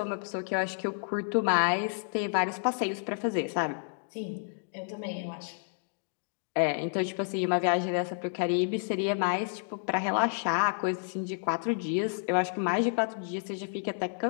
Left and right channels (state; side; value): silent; right; digital silence